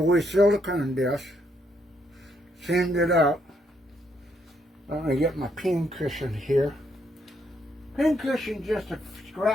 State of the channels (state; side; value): normal; both; correlation 0.74